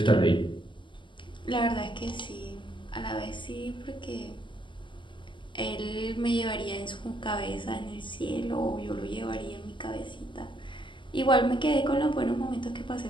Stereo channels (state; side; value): late; right; 0.24 ms